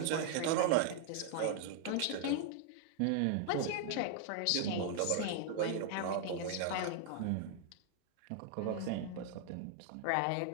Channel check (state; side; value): different; both; correlation 0.00